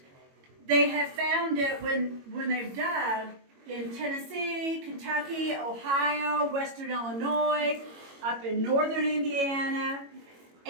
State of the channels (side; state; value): left; late; 22 ms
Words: they have found it when they've dug in Tennessee, Kentucky, Ohio, Western Illinois, up in northern Indiana,